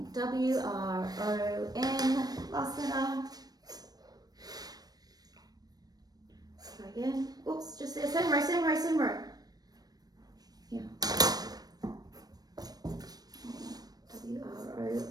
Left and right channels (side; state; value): left; late; 0.19 ms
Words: W, R, O, N, last letter. Try again. Oops, just there. Same row. Yeah. W, R, O,